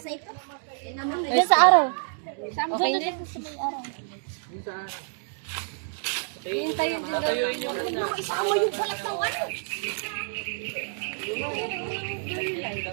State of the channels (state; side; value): silent; left; digital silence